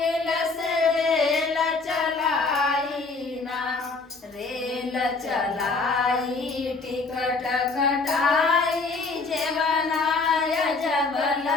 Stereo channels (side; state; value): right; quieter; 3.9 dB